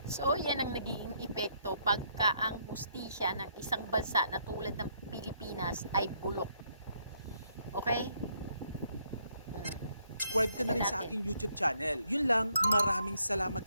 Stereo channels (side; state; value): both; inverted; correlation -0.71